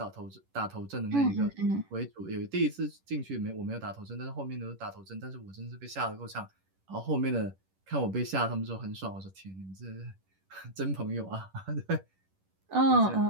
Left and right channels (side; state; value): left; late; 11 ms